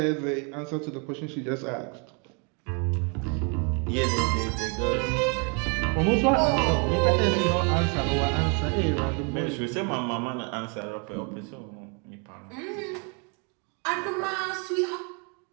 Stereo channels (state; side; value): quieter; left; 35.7 dB